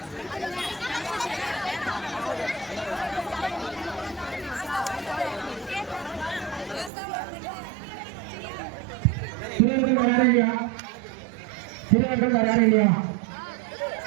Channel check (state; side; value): drops out; left; at 6.9 s